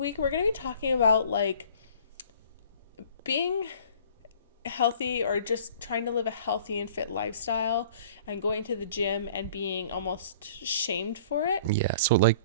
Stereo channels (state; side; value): inverted; both; correlation -0.50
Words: we're going to be talking about, like, being healthy or just trying to live a healthy and fit lifestyle and going to the gym and being almost shamed for it. Yeah, so like